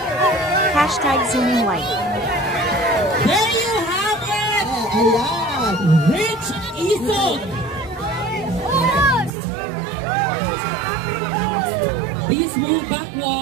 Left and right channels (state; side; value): drops out; left; at 9.3 s